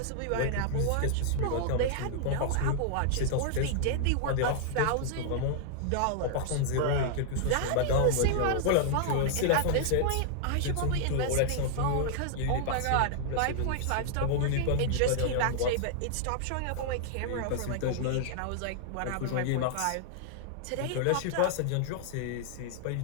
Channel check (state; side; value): different; both; correlation -0.01